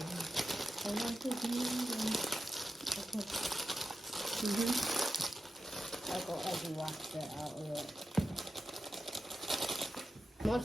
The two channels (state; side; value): normal; both; correlation 0.90